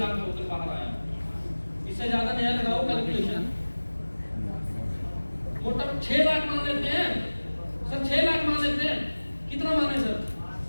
टोकन बाहर आया। इससे ज्यादा नया लगाओ कैलकुलेशन, मोटा 6 लाख मान लेते हैं सर, 6 लाख मान लेते हैं। कितना माने सर,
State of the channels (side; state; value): both; inverted; correlation -1.00